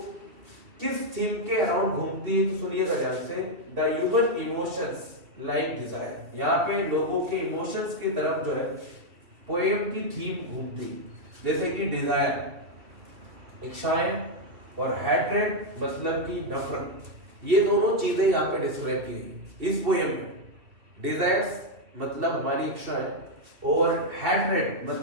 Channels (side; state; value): left; late; 2.8 ms